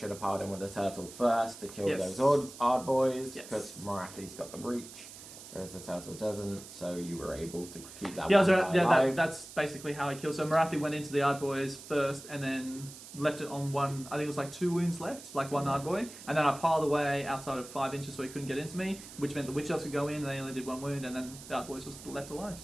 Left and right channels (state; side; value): noise; right; hiss, 15 dB below the sound